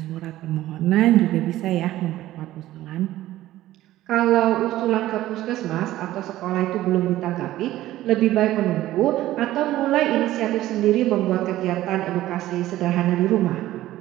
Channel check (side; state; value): left; quieter; 14.9 dB